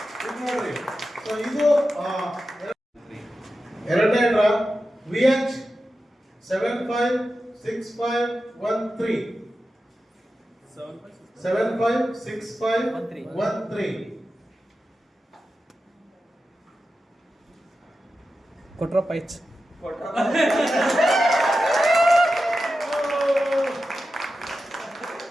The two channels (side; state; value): both; normal; correlation 0.91